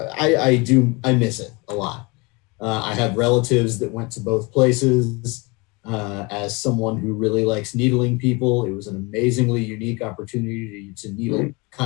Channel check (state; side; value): quieter; right; 27.1 dB